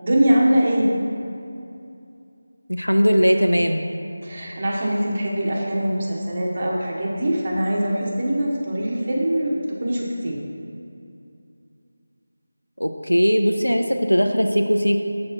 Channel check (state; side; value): inverted; both; correlation -0.98